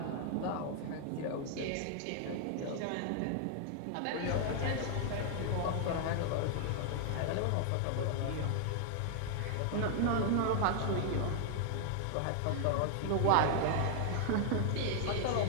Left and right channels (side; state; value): both; different; correlation 0.00